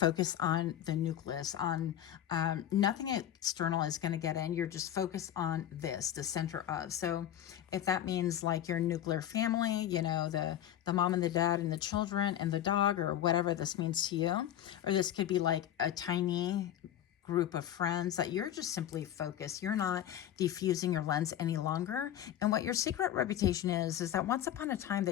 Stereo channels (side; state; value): right; quieter; 11.3 dB